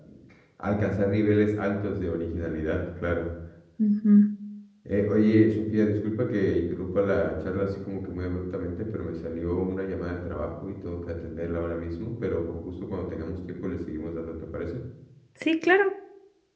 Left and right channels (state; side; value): identical; both; correlation 1.00